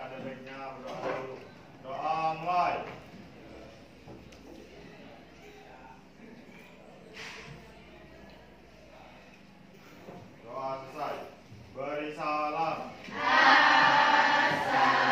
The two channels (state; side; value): identical; both; correlation 1.00